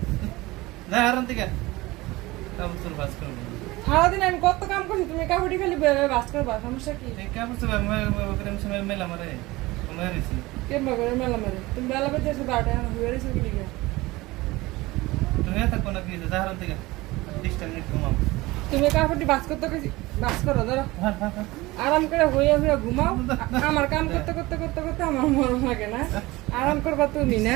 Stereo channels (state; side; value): quieter; left; 20.4 dB